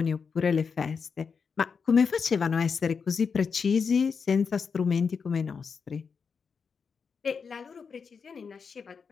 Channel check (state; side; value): quieter; right; 5.8 dB